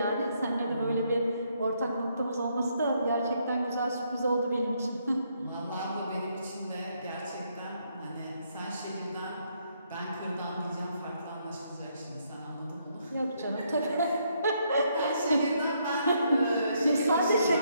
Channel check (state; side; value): inverted; both; correlation -0.73